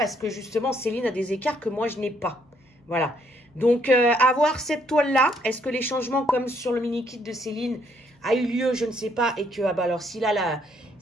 que justement, Céline a des écarts que moi, je n'ai pas. Voilà. Donc, avoir cette toile-là, est-ce que les changements comme sur le mini-kit de Céline a eu lieu, je ne sais pas, et que, ah bah alors, si là,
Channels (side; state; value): both; normal; correlation 0.70